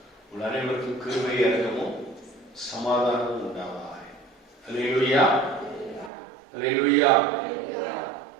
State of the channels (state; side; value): drops out; left; at 6.1 s